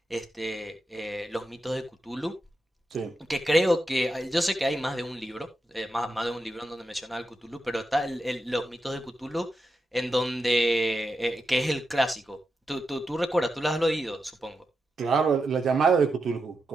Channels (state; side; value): normal; both; correlation 0.87